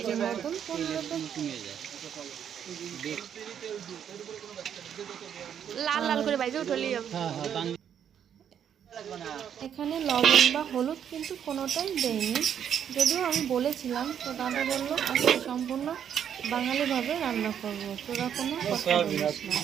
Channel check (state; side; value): quieter; left; 8.8 dB